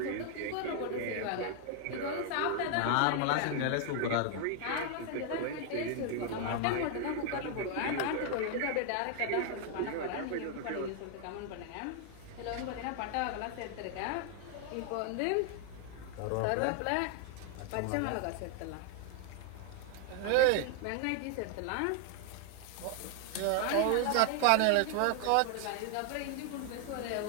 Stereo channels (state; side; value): different; both; correlation 0.00